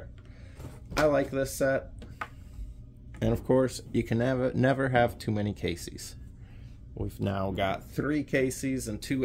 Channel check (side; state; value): both; identical; correlation 1.00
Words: I like this set. And of course, you can never have too many Caseys. We've now got 3 Caseys and 2